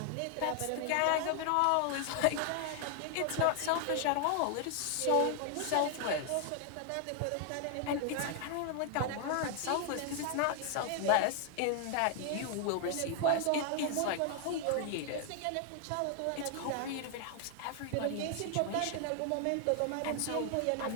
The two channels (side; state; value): both; different; correlation 0.00